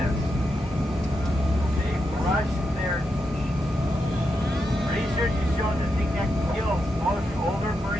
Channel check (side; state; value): both; normal; correlation 0.85